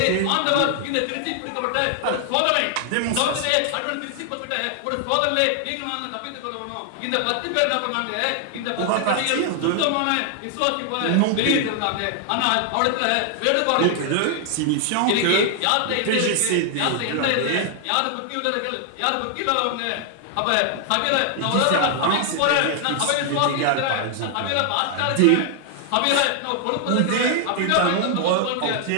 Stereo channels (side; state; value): both; different; correlation 0.00